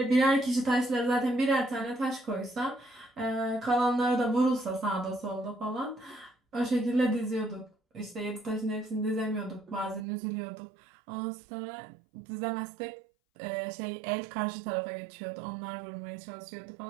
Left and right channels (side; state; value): left; drops out; at 10.1 s